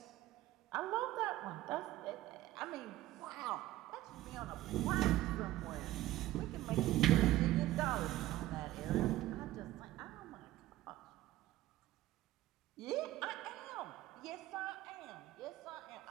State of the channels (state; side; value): quieter; left; 15.7 dB